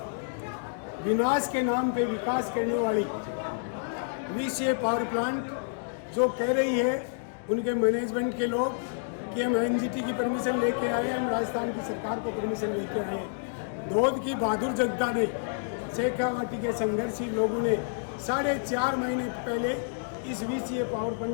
विनाश के नाम पे विकास करने वाली VCA पावर प्लांट जो कह रही है उनके मैनेजमेंट के लोग कि हम NGT की परमिशन लेके आए हम राजस्थान की सरकार को परमिशन लेके आए। धोद की बहादुर जनता ने शेखावाटी के संघर्षी लोगों ने 4.5 महीने पहले इस VCA पावर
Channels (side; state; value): right; silent; digital silence